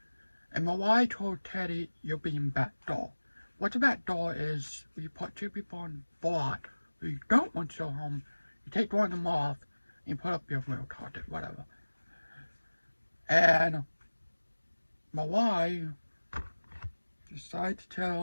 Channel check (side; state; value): both; inverted; correlation -1.00